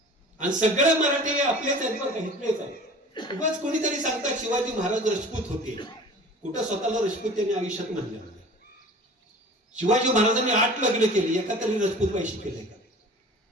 आणि सगळे मराठी आपलेच आहेत बरं का, इथलेच आहेत. उगाच कोणीतरी सांगतात शिवाजी महाराज राजपूत होते. कुठं स्वतःला राजपूत त्यांनी आयुष्यात म्हणले नाही. शिवाजी महाराजांनी 8 लग्न केली, एका तरी राजपूत पैसे केले का?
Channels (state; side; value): normal; both; correlation 0.42